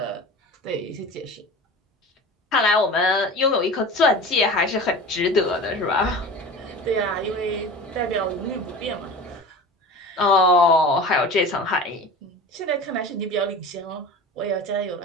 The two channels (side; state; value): both; normal; correlation 0.35